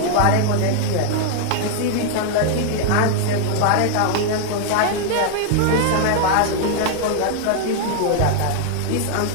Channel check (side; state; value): both; different; correlation 0.00